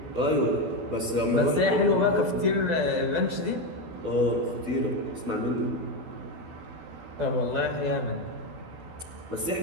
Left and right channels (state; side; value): late; left; 12 ms